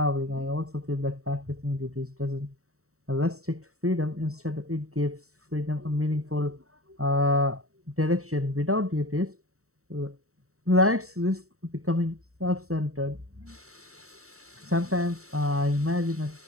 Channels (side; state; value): left; late; 0.64 ms